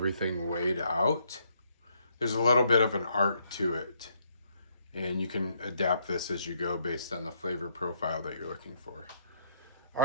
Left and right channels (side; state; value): both; inverted; correlation -0.73